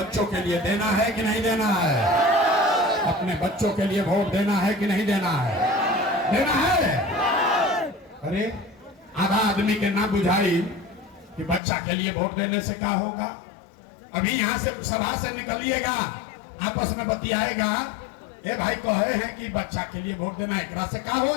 के लिए देना है कि नहीं देना है। अपने बच्चों के लिए वोट देना है कि नहीं देना है, देना है। अरे आधा आदमी के ना बुझाई कि बच्चा के लिए वोट देने से क्या होगा। अभी यहाँ से सभा से निकलिएगा, आपस में बतियाएगा, ए भाई कहे हैं कि बच्चा के लिए वोट देना, एकरा से क्या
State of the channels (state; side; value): drops out; right; at 11.6 s